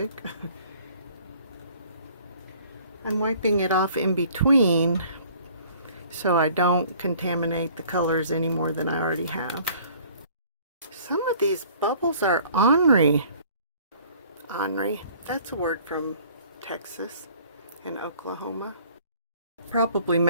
I'm wiping it off in between so I don't contaminate the colors any more than I already have. Some of these bubbles are ornery. Ornery, that's a word from Texas and Oklahoma. Probably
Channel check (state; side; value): inverted; both; correlation -0.54